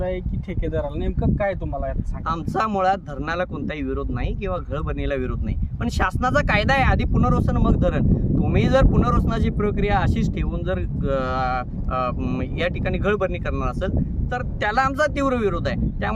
आहे की ठेकेदाराला, नेमकं काय तुम्हाला यात सांगा? आमचा मुळात धरणाला कोणताही विरोध नाही किंवा गळभरणीला विरोध नाही, पण शासनाचा कायदा आहे आधी पुनर्वसन मग धरण. तुम्ही जर पुनर्वसनाची प्रक्रिया अशीच ठेवून जर या ठिकाणी गळभरणी करणार असेल तर त्याला आमचा तीव्र विरोध आहे.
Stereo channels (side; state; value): both; identical; correlation 1.00